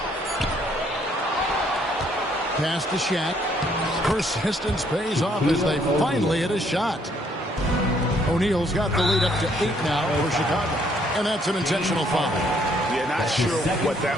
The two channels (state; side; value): normal; both; correlation 0.67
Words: Pass to Shaq. Persistence pays off as they finally hit a shot. O'Neal's got the lead up to 8 now for Chicago. And that's an intentional foul. Yeah, Not sure what that